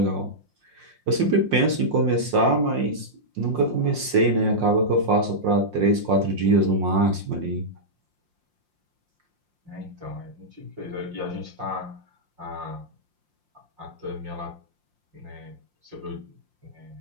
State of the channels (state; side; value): late; left; 5.7 ms